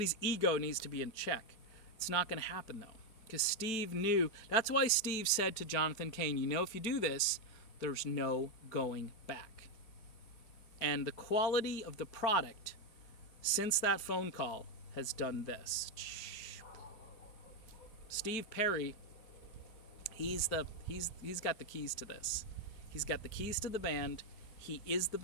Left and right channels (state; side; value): late; right; 4.5 ms